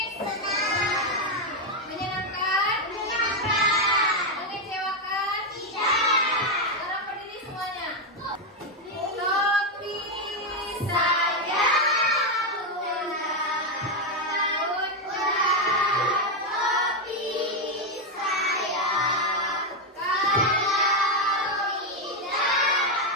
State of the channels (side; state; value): both; normal; correlation 0.05